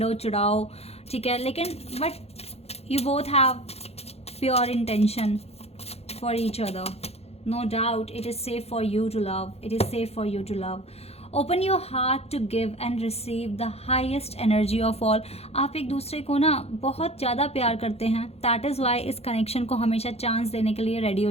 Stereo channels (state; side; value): late; right; 0.30 ms